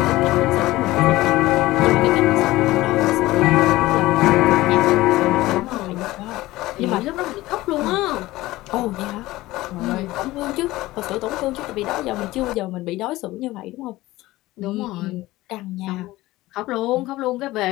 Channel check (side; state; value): right; quieter; 18.0 dB